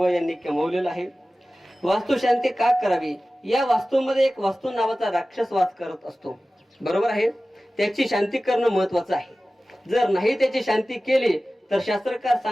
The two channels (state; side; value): normal; both; correlation 0.96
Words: यांनी कमवलेलं आहे. वास्तुशांती का करावी? या वास्तूमध्ये एक वास्तू नावाचा राक्षस वास करत असतो, बरोबर आहे. त्याची शांती करणं महत्वाचं आहे. जर नाही त्याची शांती केली तर शास्त्रकार